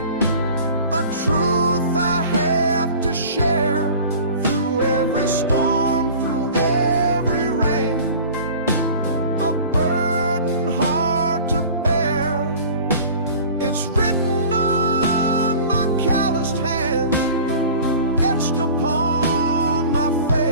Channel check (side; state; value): both; inverted; correlation -0.42